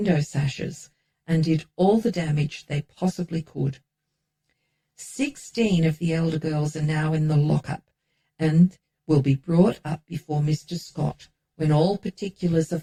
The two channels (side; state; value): both; identical; correlation 1.00